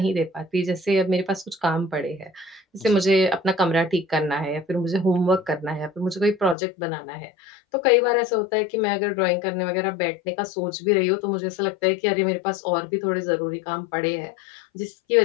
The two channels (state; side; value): drops out; right; at 6.6 s